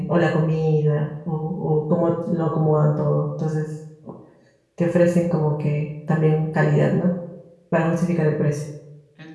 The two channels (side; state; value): both; identical; correlation 1.00